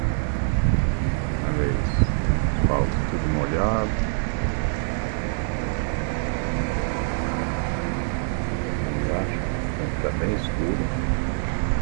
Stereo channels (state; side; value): silent; left; 59 dB below the other